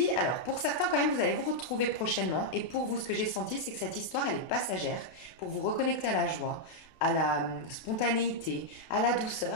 alors pour certains quand même, vous allez vous retrouver prochainement. Et pour vous, ce que j'ai senti, c'est que cette histoire, elle est passagère. Pour vous reconnecter à la joie, à la spontanéité, à la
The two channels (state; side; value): late; right; 32 ms